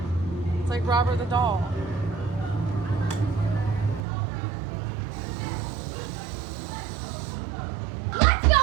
It's like Robert the doll. Let's go,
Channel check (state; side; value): drops out; left; at 4.0 s